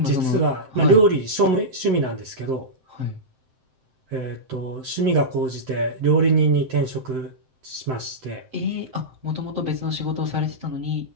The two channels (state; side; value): late; left; 7.7 ms